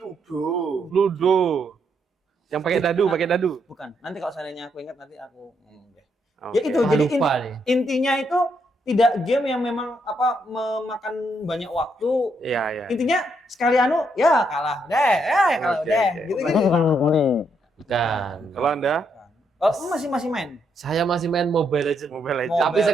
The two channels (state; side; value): normal; both; correlation 0.76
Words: Ludo. Yang pakai dadu. Bukan. Nanti kalau seandainya aku ingat nanti aku ngomong deh. Oke. Ya itu jadi Lupa nih. intinya itu tidak game yang memang memakan banyak waktu. Iya. Intinya sekali ya kalah deh, kalah Oke, deh. oke. Gitu-gitu. Bukan. Kalau Anda Oh, masih main. Saya masih main Mobile Legends. Mobile Legends. Tapi